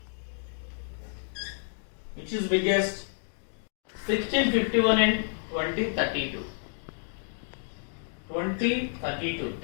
Which is biggest? 1651 and 2032. 2032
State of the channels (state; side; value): silent; right; digital silence